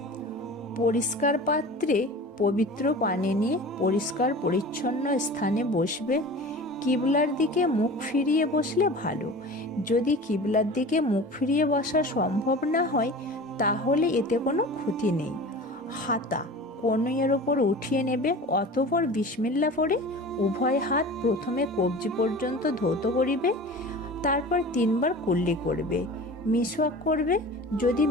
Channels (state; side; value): normal; both; correlation 0.37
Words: পরিষ্কার পাত্রে পবিত্র পানি নিয়ে পরিষ্কার পরিচ্ছন্ন স্থানে বসবে। কিবলার দিকে মুখ ফিরিয়ে বসলে ভালো। যদি কিবলার দিকে মুখ ফিরিয়ে বসা সম্ভব না হয় তাহলে এতে কোনো ক্ষতি নেই। হাতা কনুইয়ের ওপর উঠিয়ে নেবে, অতঃপর বিসমিল্লাহ পড়ে উভয় হাত প্রথমে কবজি পর্যন্ত ধৌত করিবে, তারপর 3 বার কুল্লি করবে। মিসওয়াক করবে। যদি